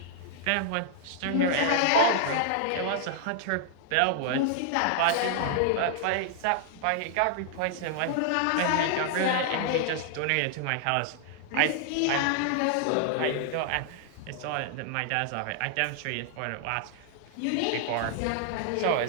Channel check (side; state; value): both; different; correlation -0.01